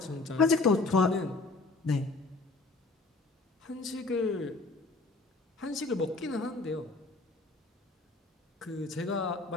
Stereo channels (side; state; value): right; quieter; 3.5 dB